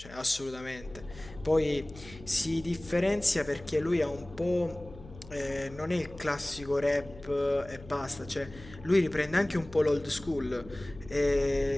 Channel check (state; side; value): noise; left; hum, 18 dB below the sound